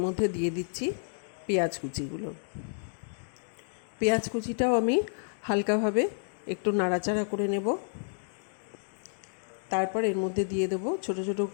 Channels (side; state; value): right; silent; digital silence